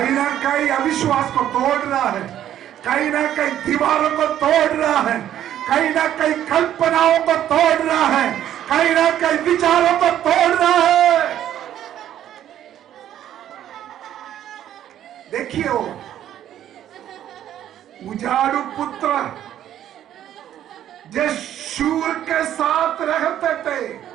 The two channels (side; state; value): left; quieter; 11.3 dB